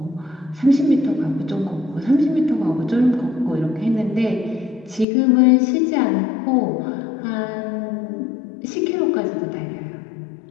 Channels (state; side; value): drops out; right; at 5.1 s